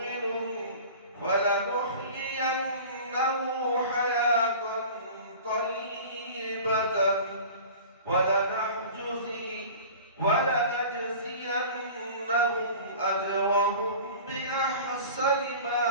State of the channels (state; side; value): inverted; both; correlation -0.40